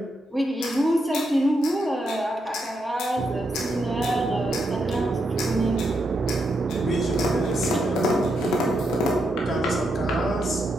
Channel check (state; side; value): normal; both; correlation 0.82